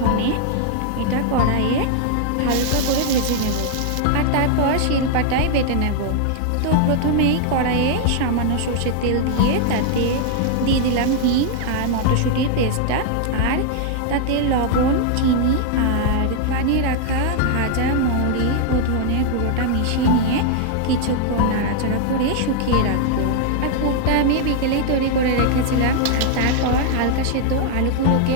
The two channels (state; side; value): different; both; correlation 0.00